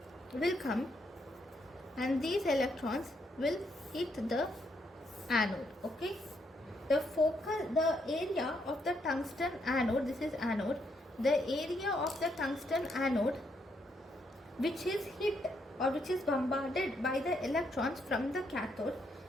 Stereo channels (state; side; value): normal; both; correlation 0.76